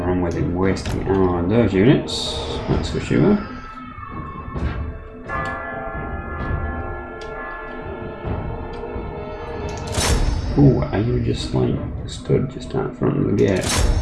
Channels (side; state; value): both; identical; correlation 1.00